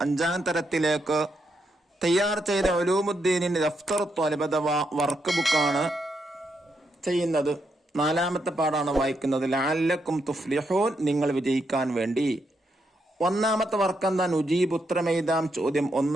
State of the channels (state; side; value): normal; both; correlation 0.80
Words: 5ാം തരത്തിലേക്ക് തയ്യാർ ചെയ്ത ഉലൂമുദ്ദീനിന്റെ ദഫ്തർ ത്വാലിബ് അഥവാ വർക്ക് ബുക്കാണ് ചെയ്യുന്നത്. 4ാമത്തെ പാഠാണ് വായിക്കുന്നത്. ലഅല്ലക്കും തുഫ്ലിഹൂൻ, നിങ്ങൾ വിജയിക്കാൻ വേണ്ടി. 1ാമത്തെ വർക്ക് എന്താ? നുജീബ്, ഉത്തരമെഴുതാം. ചോദ്യം